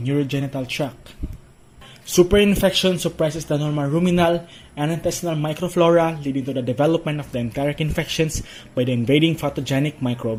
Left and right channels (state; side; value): identical; both; correlation 1.00